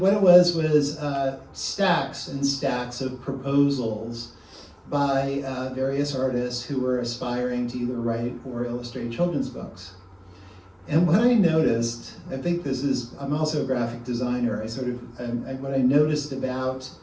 it was stacks and stacks of proposals by various artists who were aspiring to either write or illustrate children's books. And what I noticed, I'm also a graphic designer, what I noticed about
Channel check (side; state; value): both; identical; correlation 1.00